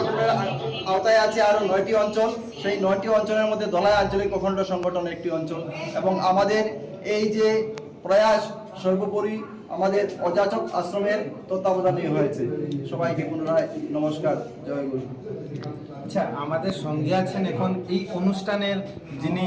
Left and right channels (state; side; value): identical; both; correlation 1.00